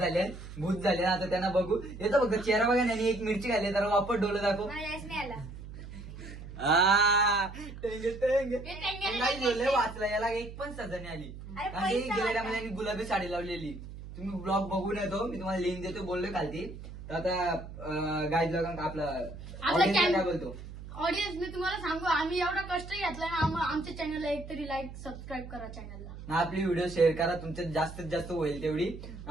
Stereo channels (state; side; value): noise; right; hum, 12 dB below the sound